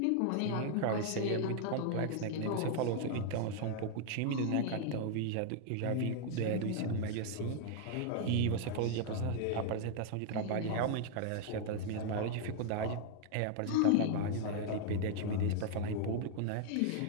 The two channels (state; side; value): different; both; correlation 0.00